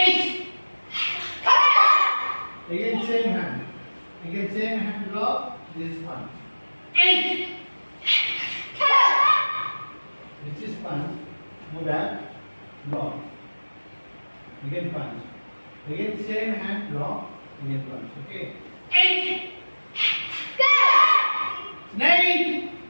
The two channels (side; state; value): both; inverted; correlation -1.00